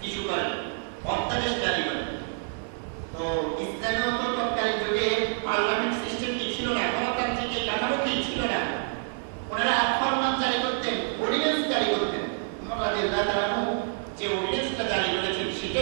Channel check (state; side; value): silent; left; digital silence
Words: ইস্যু করেন, অধ্যাদেশ জারি করেন। তো ইসলামীয় তৎকালীন যুগে পার্লামেন্ট সিস্টেম কি ছিল না, গণতান্ত্রিক এই কাঠামো কি ছিল না, ওনারা ফরমান জারি করতেন, অর্ডিন্যান্স জারি করতেন। ওমর রাদিয়াল্লাহু তাআলা যে অর্ডিন্যান্সটা জারি করেছেন